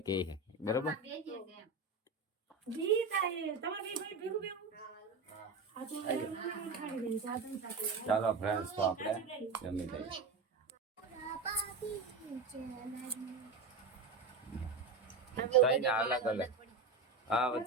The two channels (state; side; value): quieter; left; 4.0 dB